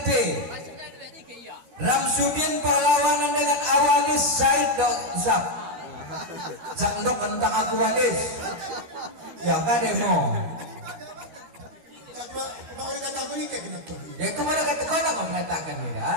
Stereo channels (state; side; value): late; left; 13 ms